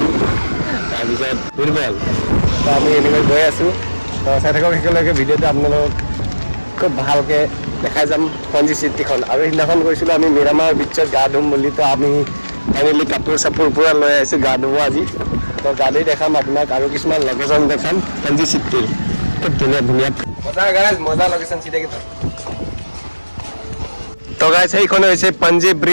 তাৰপিছত দুৰ্বল। তো আমি এনেকৈ গৈ আছোঁ। তো চাই থাকক একেলগে ভিডিঅ'টো, আপোনালোকক খুব ভালকৈ দেখাই যাম পাঞ্জি চিটিখন। আৰু সেইদিনাখন গৈছিলোঁ আমি মিৰামাৰ বিচত গা ধুম বুলি। তো আমি ফাইনেলি কাপোৰ চাপোৰ পূৰা লৈ আহিছোঁ গা ধুব আজি। তো গাড়ী দেখাম আপোনাক আৰু কিছুমান লোকেশ্যন দেখাম পাঞ্জি চিটিৰ। খুব ধুনীয়া ধুনীয়া মজা গাইজ, মজা লোকেশ্যন চিটিকে। তো গাইজ সেইখন হৈছে পাঞ্জি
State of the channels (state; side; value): inverted; both; correlation -1.00